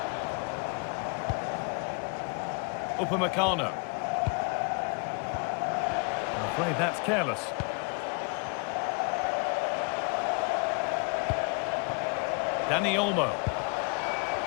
Upamecano. I'm afraid that's careless. Dani Olmo.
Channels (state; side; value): quieter; right; 35.0 dB